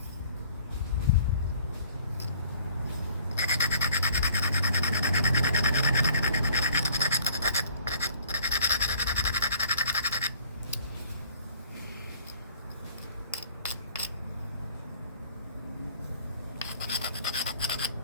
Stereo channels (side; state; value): both; inverted; correlation -0.55